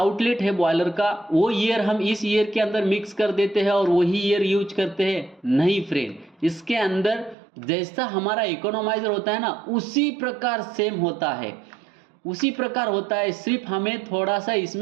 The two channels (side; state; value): left; drops out; at 7.4 s